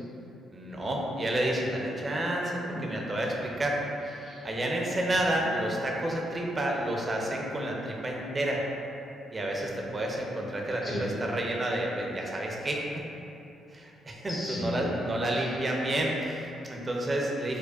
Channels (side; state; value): both; normal; correlation 0.80